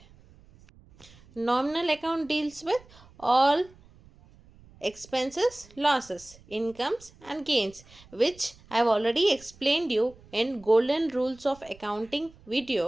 Nominal account deals with all expenses, losses, incomes and gains, which I have already explained you in Golden Rules of Accounting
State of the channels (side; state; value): right; noise; rumble, 25 dB below the sound